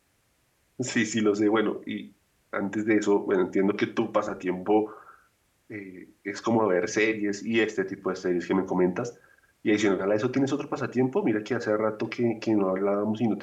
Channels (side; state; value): both; identical; correlation 1.00